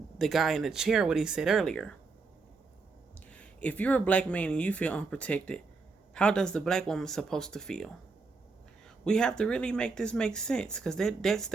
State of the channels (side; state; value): left; quieter; 4.2 dB